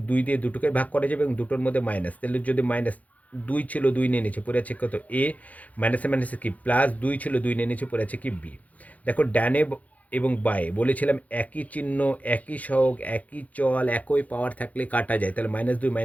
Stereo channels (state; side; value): late; right; 0.073 ms